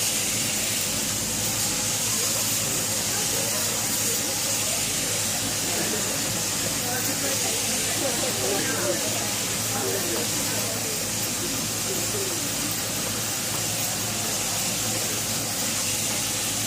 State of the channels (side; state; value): both; identical; correlation 1.00